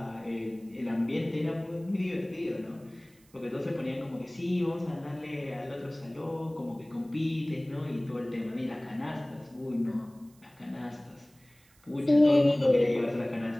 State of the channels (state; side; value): noise; right; hiss, 30 dB below the sound